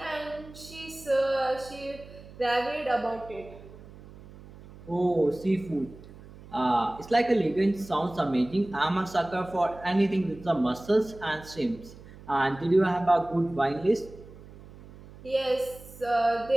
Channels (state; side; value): noise; right; hum, 19 dB below the sound